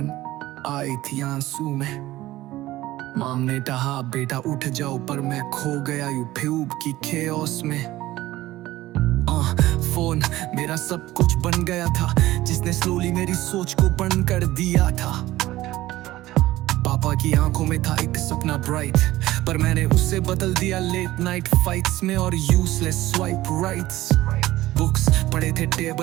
आई थी आंसू में। माम ने कहा बेटा उठ जाओ, पर मैं खो गया यूट्यूब की खेओस में। फोन मेरा सब कुछ बन गया था, जिसने स्लोली मेरी सोच को बंद कर दिया था। पापा की आंखों में था एक सपना ब्राइट, पर मैंने उसे बदल दिया लेट नाइट फाइट्स में और यूजलेस स्वाइप राइट्स। बुक्स पड़े थे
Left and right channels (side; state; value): left; quieter; 16.4 dB